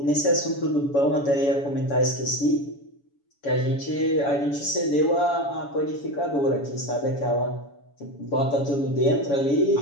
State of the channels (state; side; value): late; right; 7.1 ms